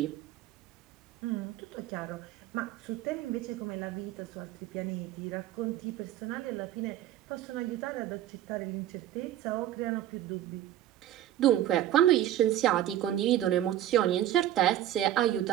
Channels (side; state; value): left; quieter; 12.5 dB